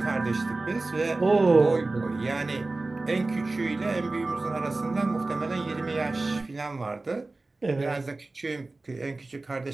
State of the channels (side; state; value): left; quieter; 3.2 dB